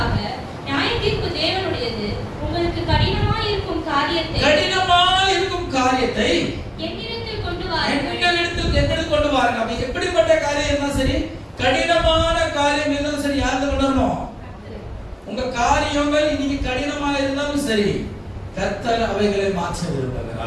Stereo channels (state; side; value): identical; both; correlation 1.00